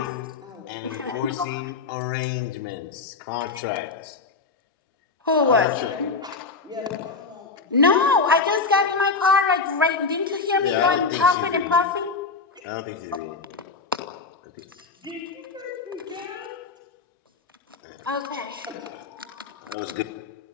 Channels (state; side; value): quieter; right; 4.4 dB